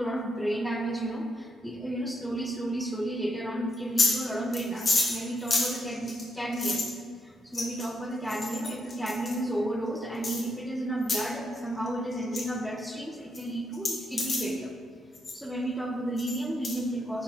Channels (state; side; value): normal; both; correlation 0.79